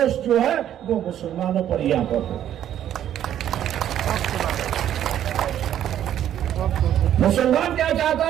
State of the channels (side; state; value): left; quieter; 10.9 dB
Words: जो है वो मुसलमानों पर यहां पर हो। मुसलमान क्या चाहता